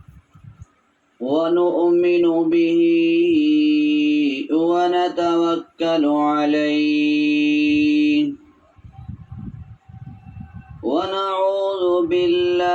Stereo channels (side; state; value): both; identical; correlation 1.00